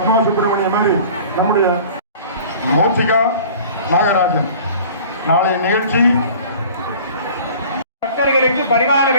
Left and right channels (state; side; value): inverted; both; correlation -0.45